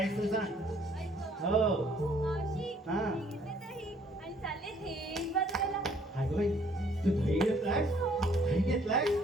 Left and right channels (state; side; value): normal; both; correlation 0.62